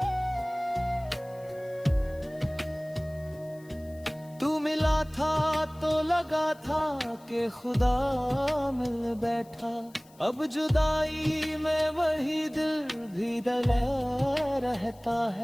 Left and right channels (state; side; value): noise; left; hiss, 27 dB below the sound